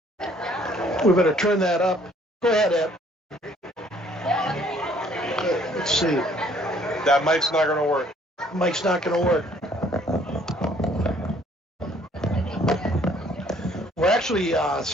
We better turn that up. Go ahead, Ed. Okay, let's see. That mic's not going to work. Mic's not going to work. We're actually,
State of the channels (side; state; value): both; normal; correlation 0.61